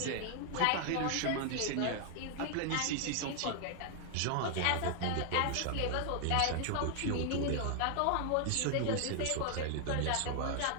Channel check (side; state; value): both; different; correlation 0.00